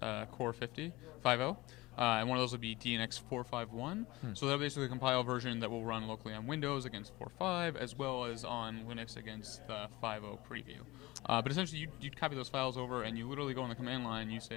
Core 50, and one of those will be DNX 4.5.1. So that'll basically compile a version that will run locally on Windows against 4.5, as well as on Linux against the 5.0 preview. But essentially, you'd copy those files over, and you literally go on the command line, you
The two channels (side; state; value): right; quieter; 20.6 dB